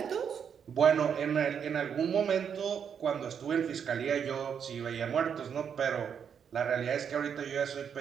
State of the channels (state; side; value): quieter; left; 7.5 dB